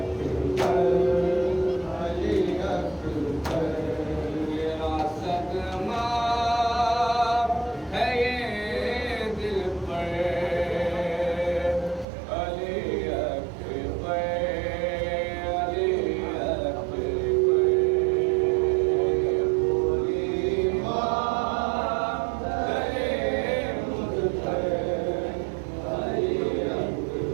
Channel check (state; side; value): drops out; left; at 12.1 s